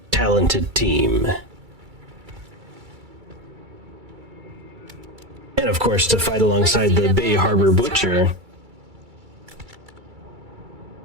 talented team. And of course, to fight alongside the Bay Harbor Butcher.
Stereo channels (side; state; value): left; late; 2.3 ms